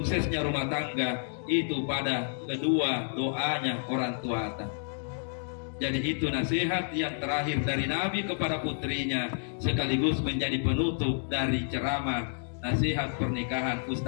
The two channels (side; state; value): right; silent; digital silence